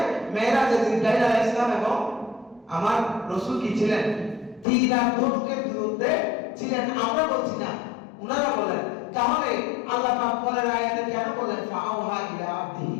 মেরাজে জিবরাইল আলাইহিস সালাম এবং আমার রাসূল কি ছিলেন, তীর আর ধনুকের দূরত্বে ছিলেন। আমরা বলছি না, ওনারা বলেন। তাহলে আল্লাহ পাক পরের আয়াতে কেন বলেন ফাআওহা ইলা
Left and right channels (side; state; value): right; drops out; at 4.7 s